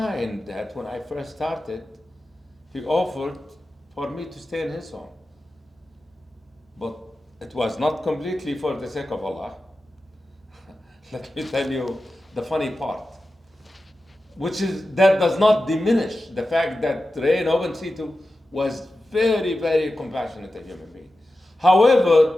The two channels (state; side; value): normal; both; correlation 0.93